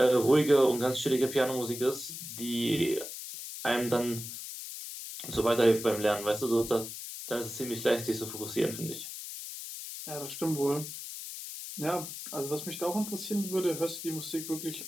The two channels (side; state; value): left; noise; hiss, 9 dB below the sound